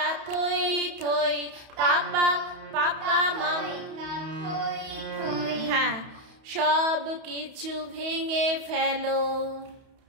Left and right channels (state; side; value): late; left; 31 ms